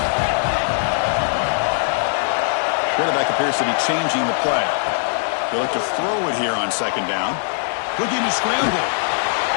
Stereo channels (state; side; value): silent; right; digital silence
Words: Quarterback appears to be changing the play. They look to throw it here on 2nd down. Looking to scramble.